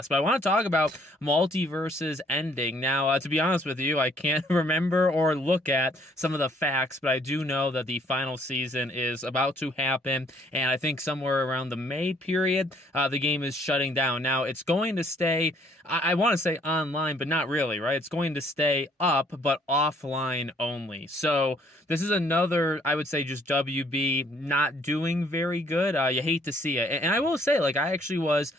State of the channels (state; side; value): normal; both; correlation 0.63